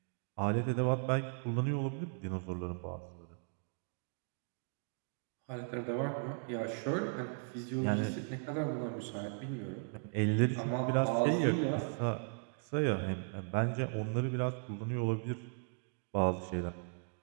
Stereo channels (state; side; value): silent; left; 53 dB below the other